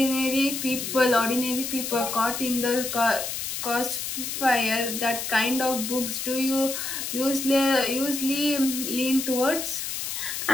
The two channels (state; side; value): noise; left; hiss, 4 dB below the sound